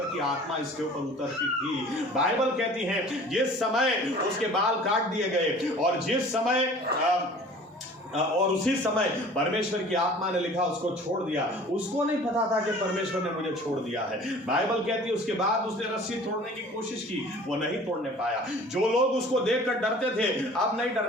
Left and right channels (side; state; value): both; normal; correlation 0.46